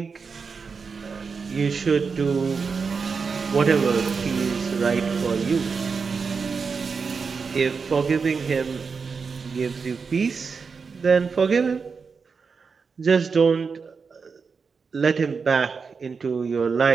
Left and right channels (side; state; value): left; quieter; 5.2 dB